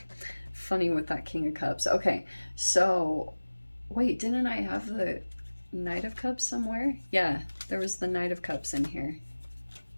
Funny with that King of Cups. Okay, so, wait, didn't I have the Knight of Cups somewhere? Yeah, there was the Knight of Cups in here.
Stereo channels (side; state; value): both; inverted; correlation -1.00